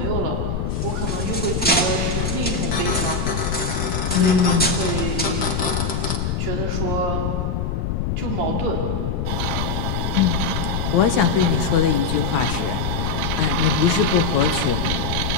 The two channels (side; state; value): left; noise; rumble, 1 dB below the sound